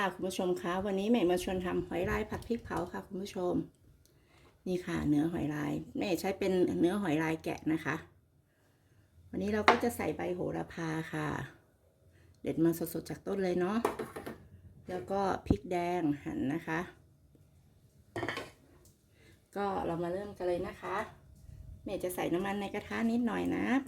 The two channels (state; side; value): identical; both; correlation 1.00